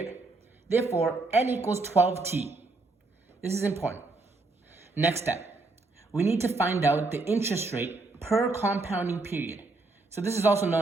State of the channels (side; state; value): left; quieter; 3.3 dB